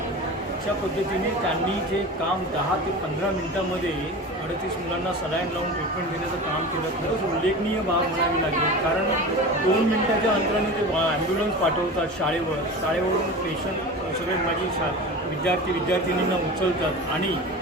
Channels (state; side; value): normal; both; correlation 0.32